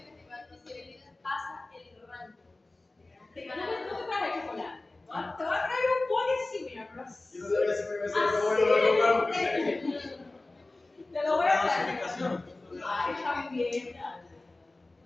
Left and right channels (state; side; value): quieter; right; 3.0 dB